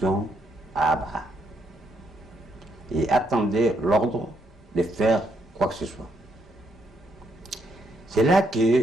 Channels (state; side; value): normal; both; correlation 0.74